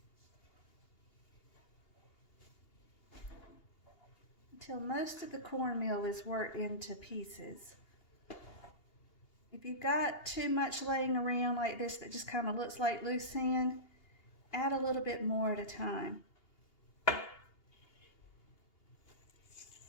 Until most of the cornmeal is worked into pieces. If you've got too much laying around like this that just kind of looks like loose sand, add a little bit more at a time.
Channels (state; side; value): late; right; 2.8 ms